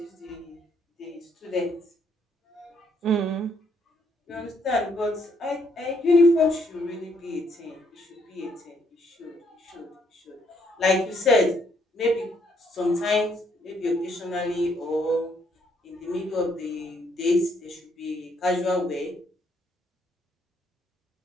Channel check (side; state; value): both; normal; correlation 0.71